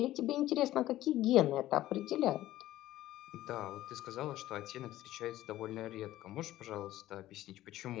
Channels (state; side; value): quieter; right; 14.8 dB